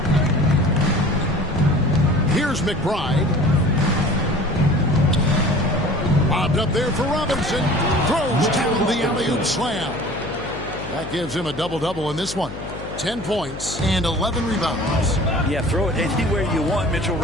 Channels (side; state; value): left; noise; hum, 11 dB below the sound